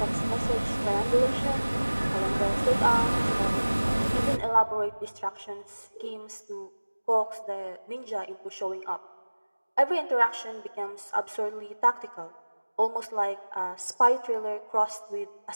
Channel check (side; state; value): both; inverted; correlation -1.00